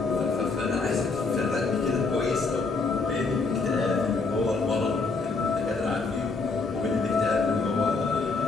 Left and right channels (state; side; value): quieter; right; 4.1 dB